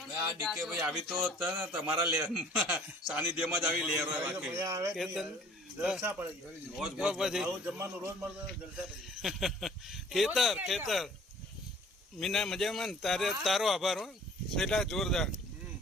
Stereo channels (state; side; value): normal; both; correlation 0.52